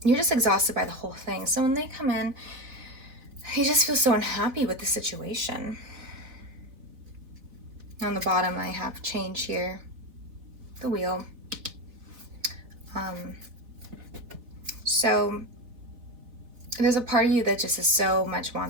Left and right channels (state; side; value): late; left; 4.0 ms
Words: you're just exhausted by the whole thing. So when they come in, you just feel so unhappy with the situation. On the bottom, I have change here, the Wheel. So there's a part of you that just so much